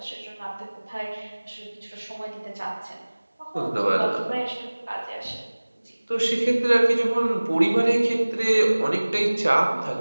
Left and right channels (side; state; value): both; inverted; correlation -1.00